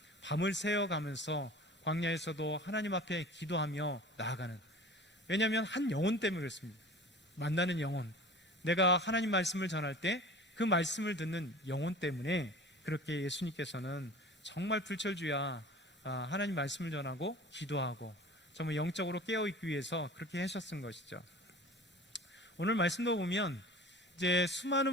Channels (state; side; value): normal; both; correlation 0.41